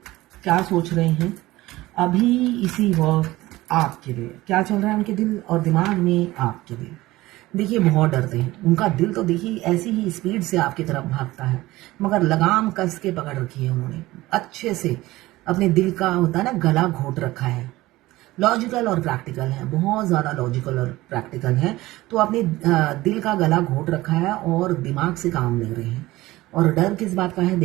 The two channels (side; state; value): left; quieter; 18.1 dB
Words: क्या सोच रहे हैं अभी इसी वक्त आपके लिए, क्या चल रहा है उनके दिल और दिमाग में आपके लिए। देखिए बहुत डरते हैं, उनका दिल तो देखिए ऐसी ही स्पीड से आपकी तरफ भागता है, मगर लगाम कस के पकड़ रखी है उन्होंने, अच्छे से अपने दिल का होता है ना गला घोट रखा है। लॉजिकल और प्रैक्टिकल है, बहुत ज़्यादा लॉजिकल और प्रैक्टिकल है, तो अपने दिल का गला घोट रखा है और दिमाग से काम ले रहे हैं। और डर किस बात का है